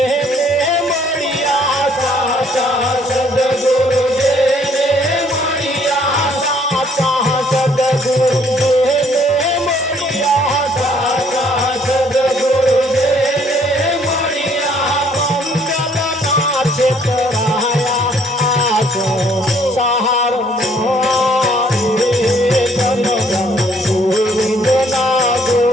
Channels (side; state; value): both; normal; correlation 0.63